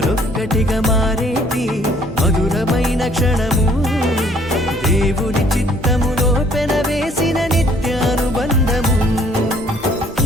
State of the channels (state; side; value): normal; both; correlation 0.61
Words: మారేటి మధురమైన క్షణము, దేవుని చిత్తములో పెనవేసిన నిత్యానుబంధము.